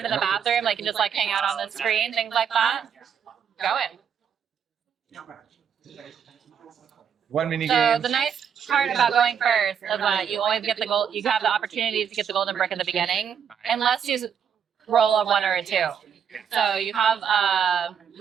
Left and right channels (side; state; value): left; quieter; 7.8 dB